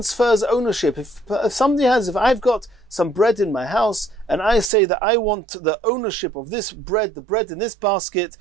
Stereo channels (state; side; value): drops out; left; at 4.7 s